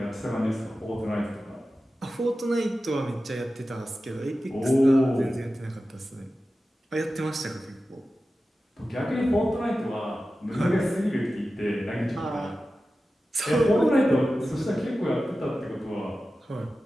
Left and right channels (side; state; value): both; normal; correlation 0.94